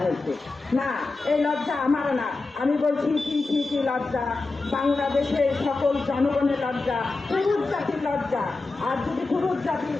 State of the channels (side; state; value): right; quieter; 3.6 dB